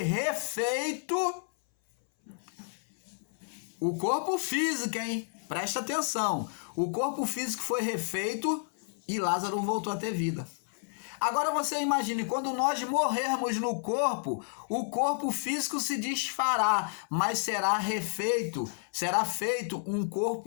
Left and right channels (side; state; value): right; silent; 57 dB below the other